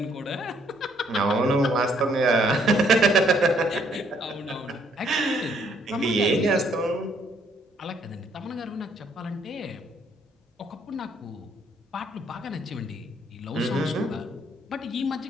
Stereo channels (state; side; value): normal; both; correlation 0.67